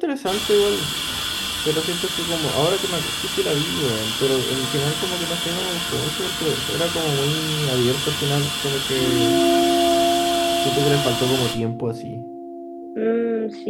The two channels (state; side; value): identical; both; correlation 1.00